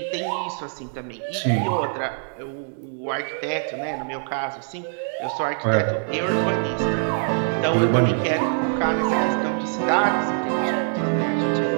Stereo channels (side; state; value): left; silent; digital silence